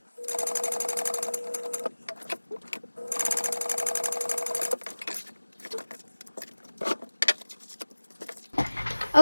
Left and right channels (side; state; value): both; inverted; correlation -1.00